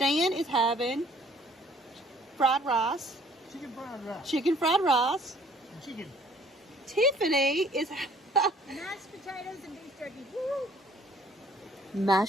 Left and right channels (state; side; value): normal; both; correlation 0.58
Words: is having fried rice. Chicken fried rice. Chicken fried rice. And chicken. Tiffany is Mashed potatoes and beef jerky. Woo!